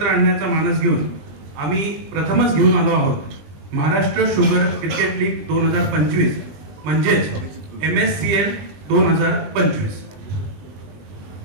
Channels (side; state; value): left; late; 20 ms